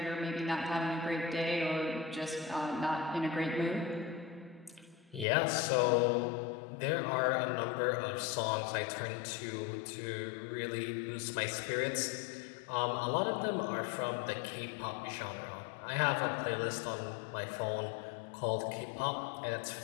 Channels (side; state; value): right; drops out; at 5.2 s